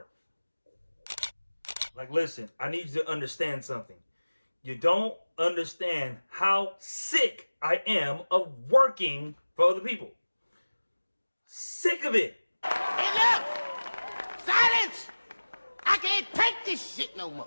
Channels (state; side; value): inverted; both; correlation -1.00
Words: Like, listen, I need you to understand something. You don't understand how sick I am of working for other people. Sick of it. Hey, look! Silence! I can't take this shit no